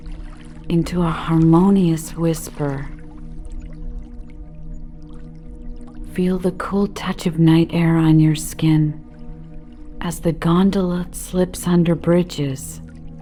into a harmonious whisper. Feel the cool touch of night air on your skin as the gondola slips under bridges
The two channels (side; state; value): both; identical; correlation 1.00